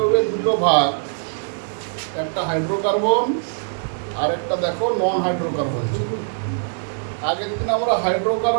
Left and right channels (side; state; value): left; silent; digital silence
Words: দুটো ভাগ, একটা হাইড্রোকার্বন আর একটা দেখো নন হাইড্রোকার্বন ছিল। আগের দিন আমরা